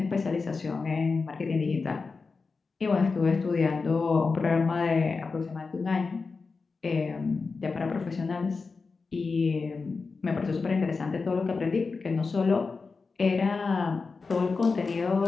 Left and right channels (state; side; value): quieter; right; 4.4 dB